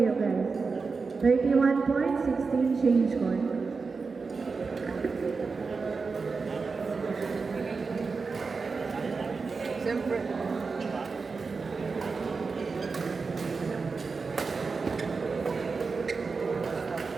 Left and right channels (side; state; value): left; quieter; 4.6 dB